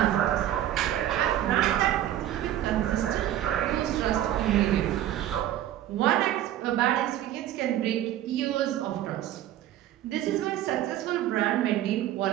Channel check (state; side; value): quieter; left; 12.6 dB